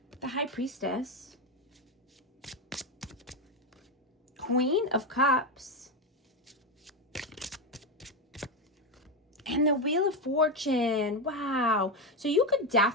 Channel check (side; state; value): both; normal; correlation 0.11